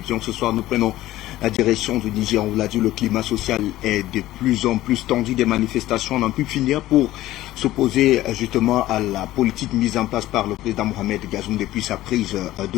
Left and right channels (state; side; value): quieter; right; 15.5 dB